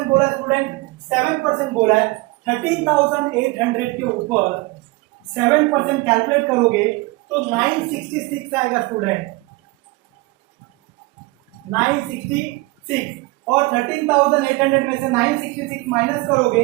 बोला है स्टूडेंट? 7% बोला है। 13,800 के ऊपर 7% कैलकुलेट करोगे तो 966 आएगा स्टूडेंट, 966। और 13,800 में से 966 माइनस करोगे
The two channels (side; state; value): left; quieter; 22.6 dB